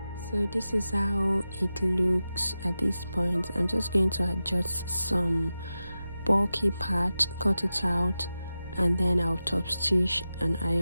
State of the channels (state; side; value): inverted; both; correlation -0.93